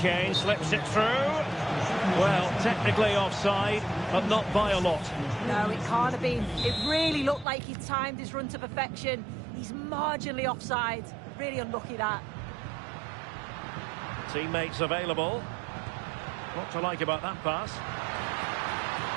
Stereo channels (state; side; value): drops out; left; at 7.5 s